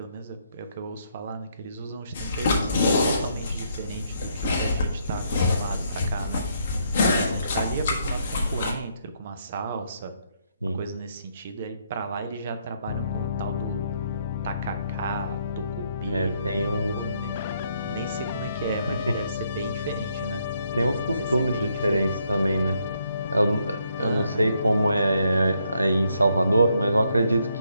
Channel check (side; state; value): both; inverted; correlation -0.73